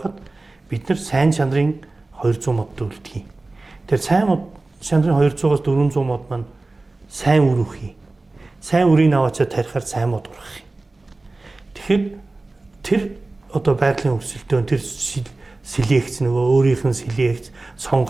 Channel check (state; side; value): quieter; left; 3.2 dB